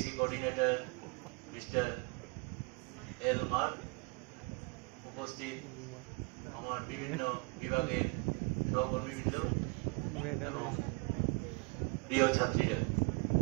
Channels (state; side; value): quieter; left; 31.5 dB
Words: coordinator mister L Mark, উপস্থিত আমার বিভিন্ন বিভাগের সহকর্মীবৃন্দ, প্রিয় ছাত্রীরা,